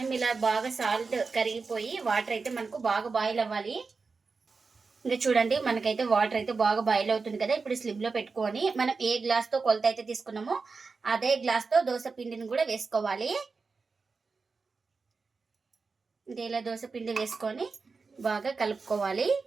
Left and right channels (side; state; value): left; quieter; 4.5 dB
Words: ఇలా బాగా సాల్ట్ కరిగిపోయి వాటర్ అయితే మనకు బాగా బాయిల్ అవ్వాలి. ఇంకా చూడండి, మనకైతే వాటర్ అయితే బాగా బాయిల్ అవుతుంది కదా. ఇప్పుడు స్లిమ్లో పెట్టుకొని మనం ఏ గ్లాస్తో కొలత అయితే తీసుకున్నామో అదే గ్లాస్తో దోశ పిండిని కూడా వేసుకోవాలి. ఇంకా ఇలా దోశ పిండి వేసుకొని బాగా కలుపుకోవాలి.